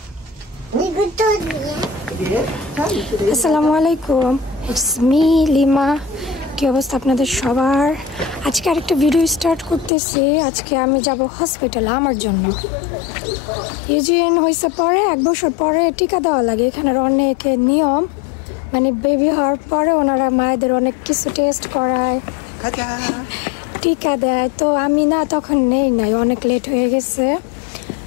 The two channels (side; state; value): right; drops out; at 9.9 s